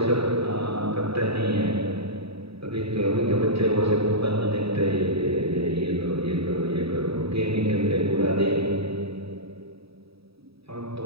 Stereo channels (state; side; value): late; left; 0.77 ms